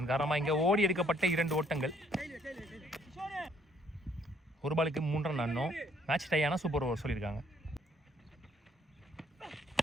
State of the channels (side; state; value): both; normal; correlation 0.66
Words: காரணமாக இங்கே ஓடி எடுக்கப்பட்ட 2 ஓட்டங்கள். ஒரு பாலுக்கு 3 ரன் ஆடணும். மேட்ச் டை ஆனால் சூப்பர் ஓவர் சொல்லியிருக்காங்க.